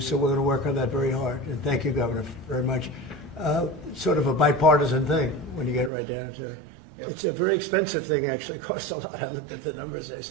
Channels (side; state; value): left; drops out; at 5.9 s